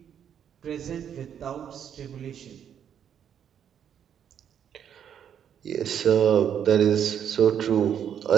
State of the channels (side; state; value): left; quieter; 8.8 dB